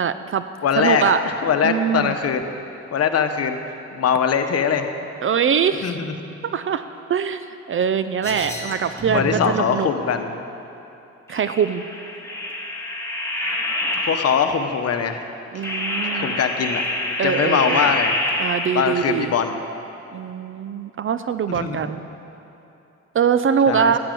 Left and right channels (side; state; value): both; normal; correlation -0.07